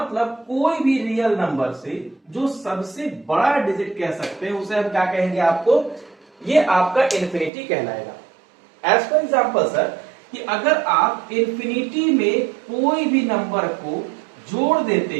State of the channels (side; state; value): left; drops out; at 7.5 s